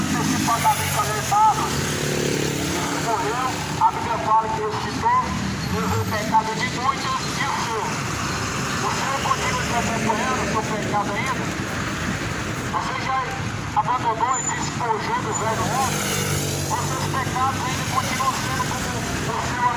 alertados. Morreu, a Bíblia fala que ressuscitou, levou o pecado de muitos e o seu. O Senhor continua te acompanhando o seu pecado ainda? Você já abandonou e despojou do velho homem? Os seus pecados ainda continuam sendo como o seu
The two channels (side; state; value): both; identical; correlation 1.00